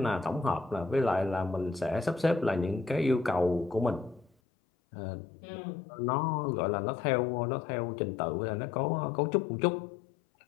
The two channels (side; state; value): right; drops out; at 4.3 s